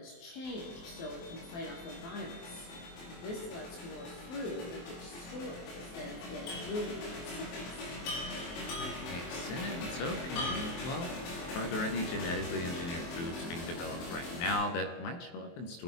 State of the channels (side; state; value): right; late; 23 ms